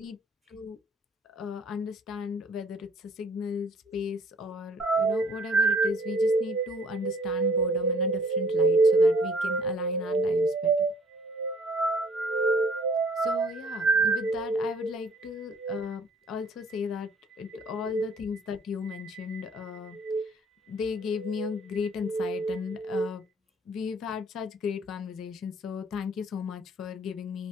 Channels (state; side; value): normal; both; correlation 0.57